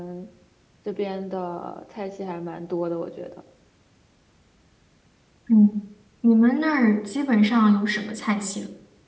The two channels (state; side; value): identical; both; correlation 1.00